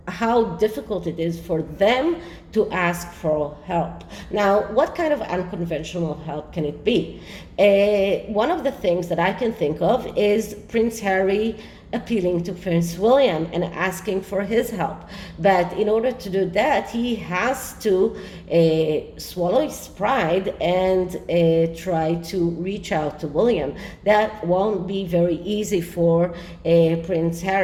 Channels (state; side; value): identical; both; correlation 1.00